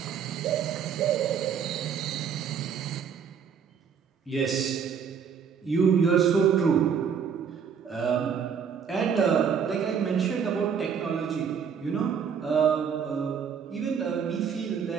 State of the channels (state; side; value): quieter; left; 7.1 dB